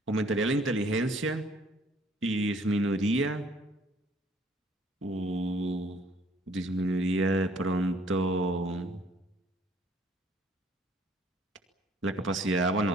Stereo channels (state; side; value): normal; both; correlation 0.60